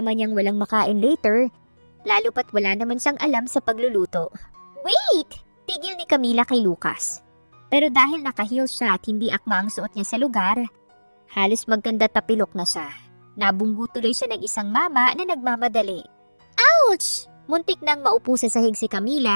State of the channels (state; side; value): inverted; both; correlation -1.00